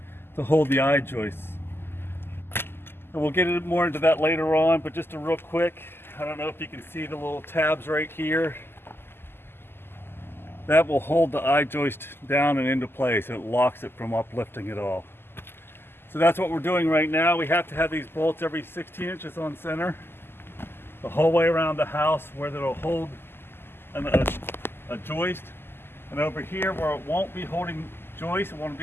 to hold the eye joists. And we'll get more into that later on, but just a real quick, I don't know if you can see the little tabs right here. That will hold the eye joist down and into place, and it locks it from uplifting at all. So that's what we're doing right now. We have to have these bolts every 16 inches on center, the whole way around the house, where it'll hold a joist. And over here where it won't be holding joist, it won't be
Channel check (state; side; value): late; right; 0.11 ms